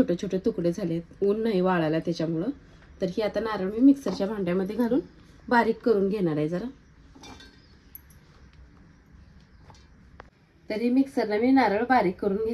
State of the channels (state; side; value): identical; both; correlation 1.00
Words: छोटे तुकडे झालेत, ऊन नाही वाळायला त्याच्यामुळे। तर ही आता नारळ मी मिक्सरच्या भांड्यामध्ये घालून बारीक करून घेणार आहे जरा। तर ही मिक्सरला मी नारळ बारीक करून